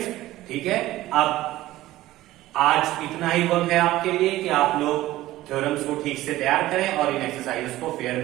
ठीक है। अब आज इतना ही वर्क है आपके लिए कि आप लोग थ्योरम्स को ठीक से तैयार करें और इन एक्सरसाइजेस को फेयर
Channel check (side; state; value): left; quieter; 16.1 dB